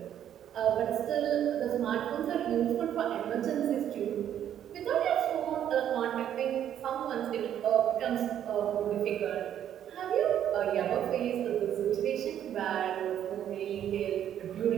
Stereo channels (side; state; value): left; quieter; 10.3 dB